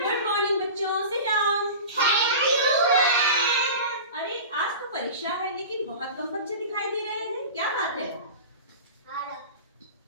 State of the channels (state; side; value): inverted; both; correlation -0.33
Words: मॉर्निंग बच्चों, सिट डाउन। अरे आज तो परीक्षा है लेकिन बहुत कम बच्चे दिखाई दे रहे हैं, क्या बात है?